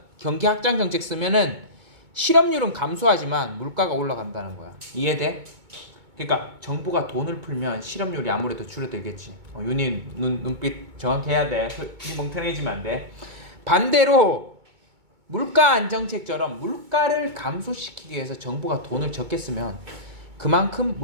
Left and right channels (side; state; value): left; late; 2.2 ms